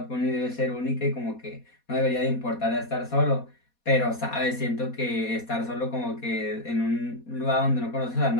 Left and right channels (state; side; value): late; right; 4.2 ms